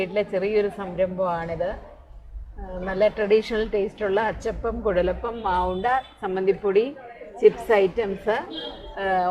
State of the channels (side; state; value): both; identical; correlation 1.00